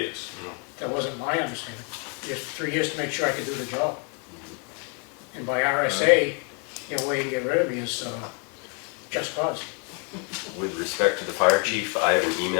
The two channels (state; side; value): quieter; right; 37.4 dB